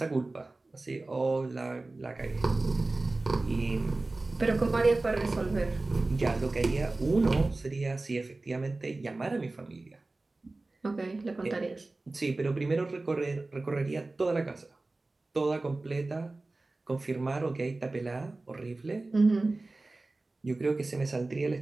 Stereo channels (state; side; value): quieter; left; 3.2 dB